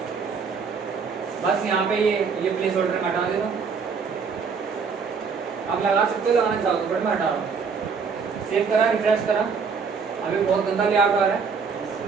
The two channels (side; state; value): left; quieter; 5.5 dB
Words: बस यहाँ पे ये प्लेस होल्डर में हटा देता हूँ। आप लगा सकते हो, लगाना चाहो तो, बट मैं हटा रहा हूँ। सेव करा, रिफ्रेश करा, अभी बहुत गंदा लेआउट आ रहा है,